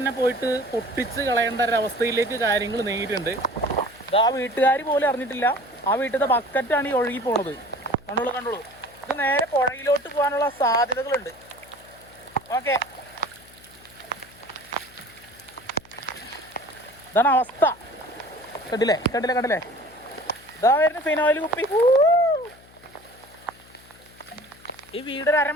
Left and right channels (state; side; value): noise; left; hum, 25 dB below the sound